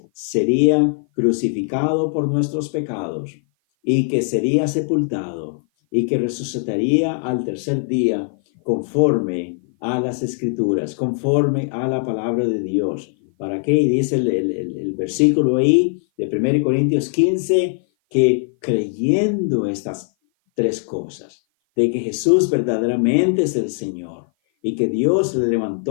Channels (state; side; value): silent; right; 56 dB below the other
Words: sería crucificado por nuestros pecados, y que sería sepultado, y que resucitaría al tercer día conforme a las Escrituras, conforme a la palabra de Dios. ¿Para qué? Y dice el versículo ahí de 1 Corintios 15, que creyendo estas 3 cosas, de que Jesús verdaderamente es el Señor, y que Dios le